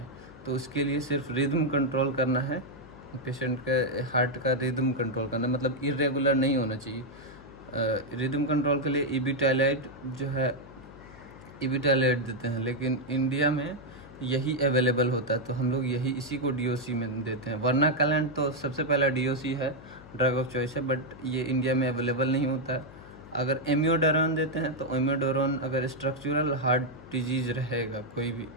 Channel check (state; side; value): noise; left; hum, 19 dB below the sound